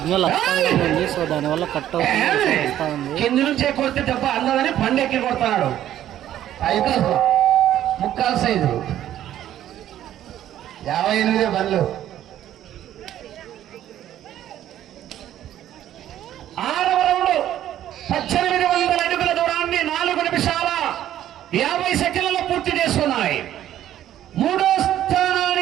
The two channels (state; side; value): quieter; left; 12.0 dB